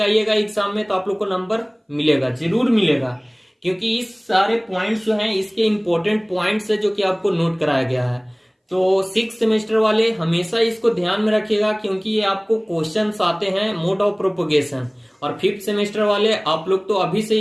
आइएगा एग्जाम में तो आप लोग को नंबर मिलेगा, जरूर मिलेगा, क्योंकि इस सारे पॉइंट्स जो हैं इसके इंपॉर्टेंट पॉइंट्स है जो कि आपको नोट कराया गया है। तो 6th सेमेस्टर वाले हमेशा इसको ध्यान में रखिएगा, क्योंकि ये आपको क्वेश्चंस आते हैं मोड ऑफ प्रोपोगेशन। और 5th सेमेस्टर वाले आप लोग तो अभी से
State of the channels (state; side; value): identical; both; correlation 1.00